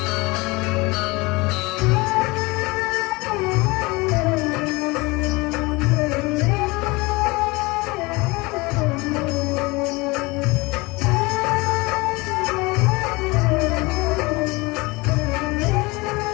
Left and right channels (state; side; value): quieter; right; 24.0 dB